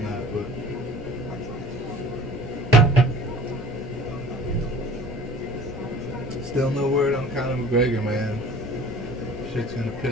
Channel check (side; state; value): both; normal; correlation 0.46